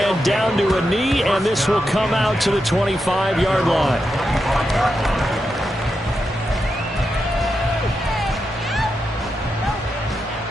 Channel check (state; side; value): normal; both; correlation 0.86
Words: down to a knee, and this will come out to the 25-yard line.